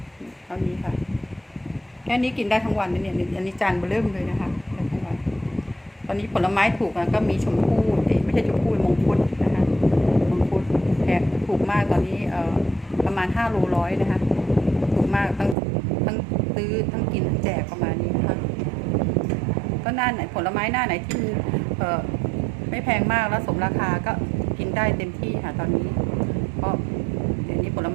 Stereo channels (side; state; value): left; drops out; at 15.6 s